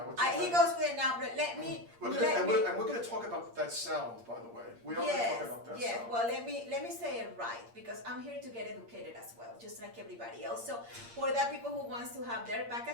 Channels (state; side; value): late; left; 8.6 ms